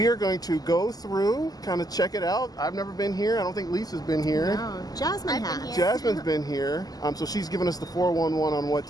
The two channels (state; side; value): late; right; 0.18 ms